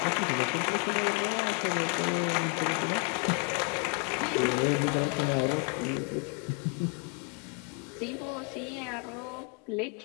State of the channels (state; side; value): quieter; right; 34.8 dB